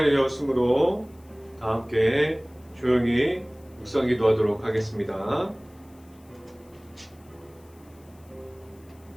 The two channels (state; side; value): noise; left; hiss, 30 dB below the sound